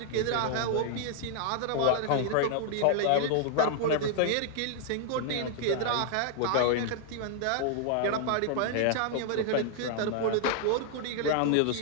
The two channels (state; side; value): different; both; correlation 0.00